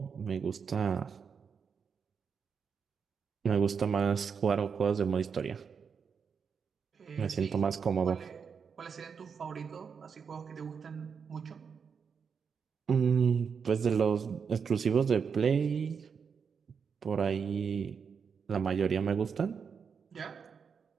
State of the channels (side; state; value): left; quieter; 6.2 dB